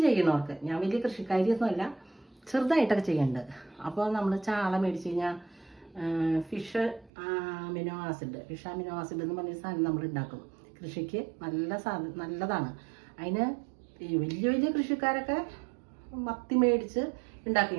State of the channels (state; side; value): drops out; left; at 7.1 s